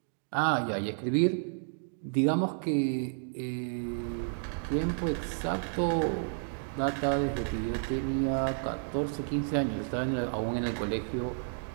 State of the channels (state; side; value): silent; left; digital silence